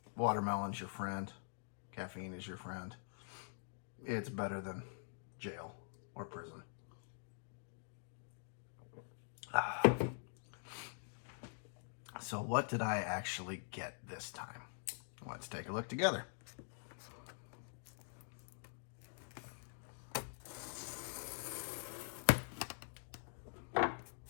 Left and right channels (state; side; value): silent; right; digital silence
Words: Watermelon's your friend. Caffeine is your friend. It's better than jail or prison. So what did I actually get this time? Let's take a look together.